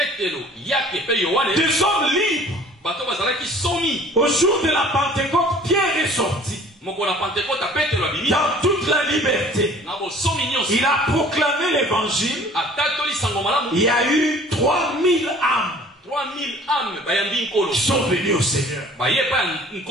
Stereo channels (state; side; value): normal; both; correlation 0.50